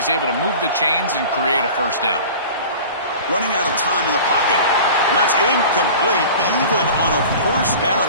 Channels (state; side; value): inverted; both; correlation -0.39